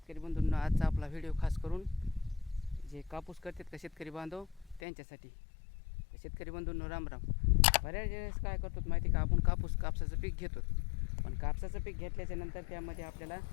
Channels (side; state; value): right; drops out; at 4.8 s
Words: बंधूंनो, आजचा आपला व्हिडिओ खास करून जे कापूस करतात का शेतकरी बांधव त्यांच्यासाठी. शेतकरी बंधूंनो राम राम. बऱ्याच वेळेस काय करतो माहिती का, आपण कापसाचं पीक घेतो, पण कापसाचं पीक घेतल्याच्या नंतर त्यामध्ये आपल्याला